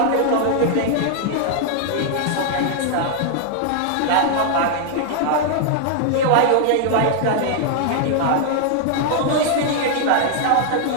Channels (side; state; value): both; different; correlation 0.00